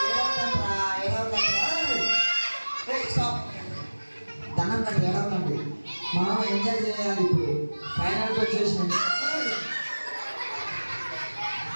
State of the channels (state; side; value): inverted; both; correlation -1.00